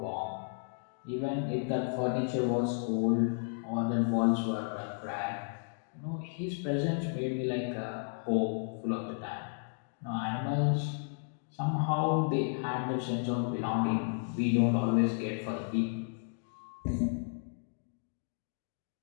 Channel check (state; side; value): silent; right; digital silence